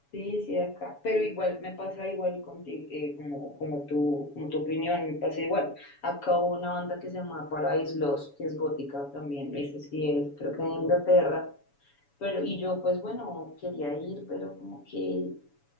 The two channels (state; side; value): late; right; 7.1 ms